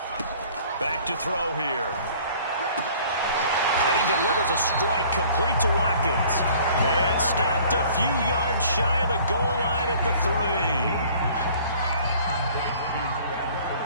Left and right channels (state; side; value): inverted; both; correlation -0.52